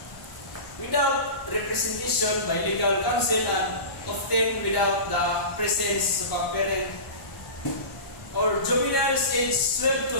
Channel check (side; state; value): right; late; 1.0 ms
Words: Without representation by legal counsel and often without the presence of a parent, or juveniles aged 12 to